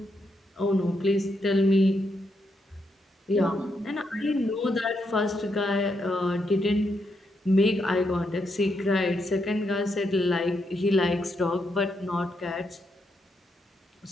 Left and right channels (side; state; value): both; normal; correlation 0.80